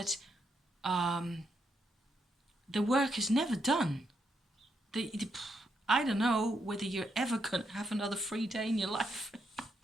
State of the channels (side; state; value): both; normal; correlation 0.79